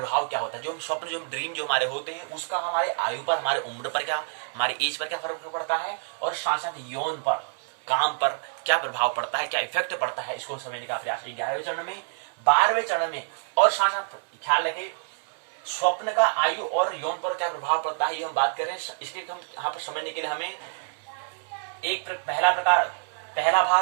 क्या होता है। जो स्वप्न, जो ड्रीम जो हमारे होते हैं, उसका हमारे आयु पर, हमारे उम्र पर क्या, हमारी एज पर क्या फर्क पड़ता है, और साथ साथ यौन पर, काम पर क्या प्रभाव पड़ता है, क्या इफेक्ट पड़ता है, इसको समझने का प्रयास 11वें चरण में। 12वें चरण में और साथ साथ ख्याल रखें स्वप्न का आयु और यौन पर क्या प्रभाव पड़ता है ये हम बात कर रहे हैं। इसके हम यहाँ पर समझने के लिए हमें पहला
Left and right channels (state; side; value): silent; left; 60 dB below the other